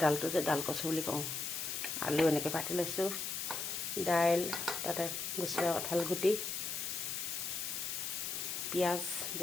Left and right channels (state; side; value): noise; left; hiss, 3 dB below the sound